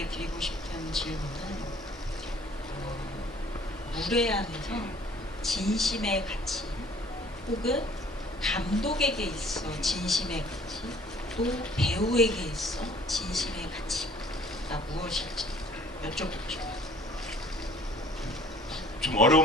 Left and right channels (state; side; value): normal; both; correlation 0.54